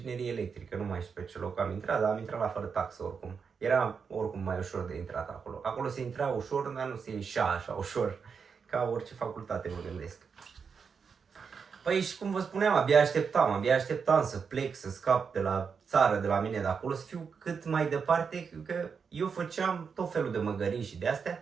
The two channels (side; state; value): left; quieter; 6.0 dB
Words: electrică, nu mai știu pe ce loc am intrat, dar am intrat la fără taxă oricum. Era oricum mai ușor de intrat acolo. Acolo se intra ușor, dar nu se ieșea așa ușor, ca orice facultate, mă gândesc. Păi și cum vă spuneam, abia așteptam să plec, să scap de la țară, de la mine de acolo, să fiu cât mai departe, că eu făceam tot felul de măgării și de